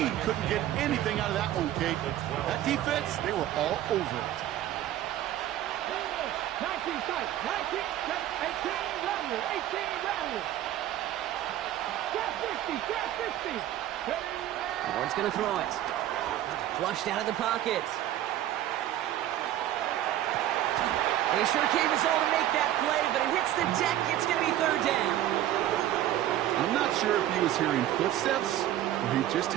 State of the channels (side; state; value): left; quieter; 12.9 dB